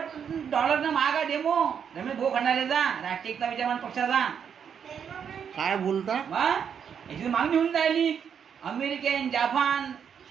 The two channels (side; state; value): left; quieter; 7.6 dB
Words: डॉलरनं महाग आहे डेमो. रमेश भाऊ खंडारेचा राष्ट्रीयता विचारमान पक्षाचा. काय बोलता? मग याची मागणी होऊन राहिली. अमेरिकन, जापान,